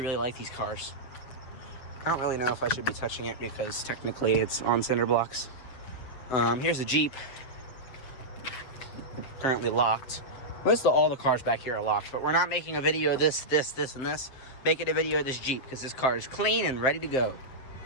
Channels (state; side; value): late; right; 7.6 ms